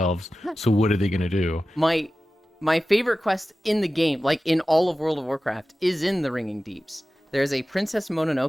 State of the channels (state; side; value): normal; both; correlation 0.95